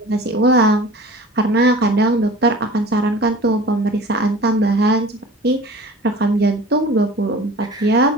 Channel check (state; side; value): normal; both; correlation 0.41